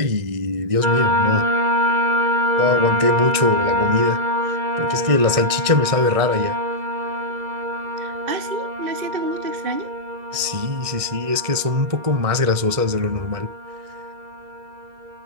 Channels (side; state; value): left; late; 2.0 ms